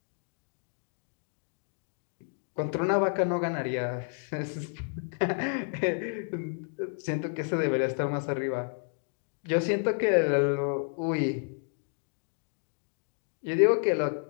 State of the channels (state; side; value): silent; right; 57 dB below the other